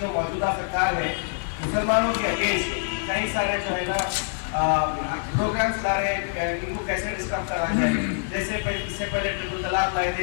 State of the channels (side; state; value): right; silent; 55 dB below the other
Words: मौजूदा सरकार है मुसलमानों के अगेंस्ट कई सारे जो है ना प्रोग्राम्स ला रहे हैं, इनको कैसे डिस्टर्ब करा जाए। जैसे इससे पहले ट्रिपल तलाक लाए